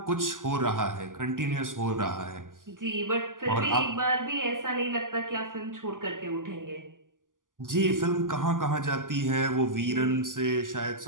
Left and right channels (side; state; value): left; late; 0.88 ms